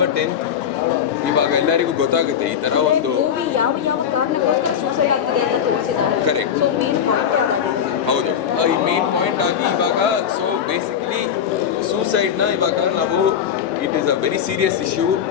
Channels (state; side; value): quieter; right; 8.5 dB